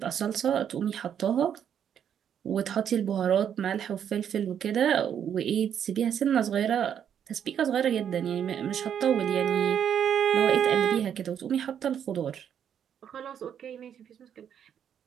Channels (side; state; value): left; quieter; 8.8 dB